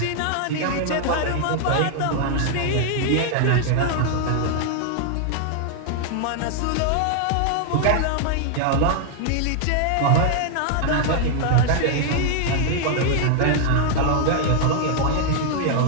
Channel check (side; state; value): both; different; correlation 0.00